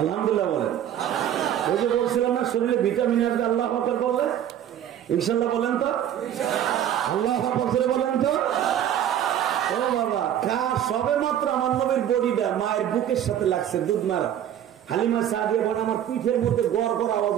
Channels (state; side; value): quieter; left; 10.5 dB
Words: আলহামদুলিল্লাহ বলেন। ওই যে বলছিলাম না শরীরে ভিটামিন আসবে, আল্লাহ আকবার বললে ইনশাল্লাহ বলেন তো, আল্লাহ আকবার বলেন তো। ও বাবা, সবে মাত্র আমার নবীর বডিটা মায়ের বুকের সাথে লাগছে, দুধ মারা। হালিমা সাদিয়া বলে আমার পিঠের মধ্যে গড় গড় আওয়াজ